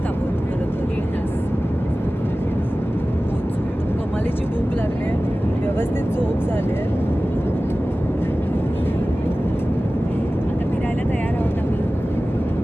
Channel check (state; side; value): normal; both; correlation 0.96